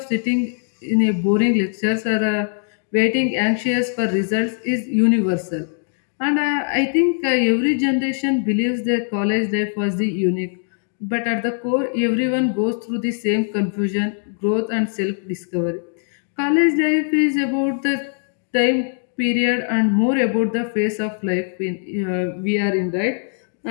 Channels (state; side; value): silent; right; digital silence